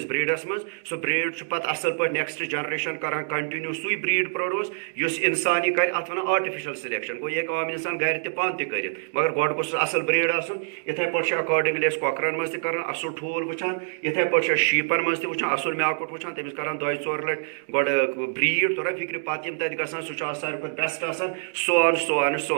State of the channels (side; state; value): left; silent; digital silence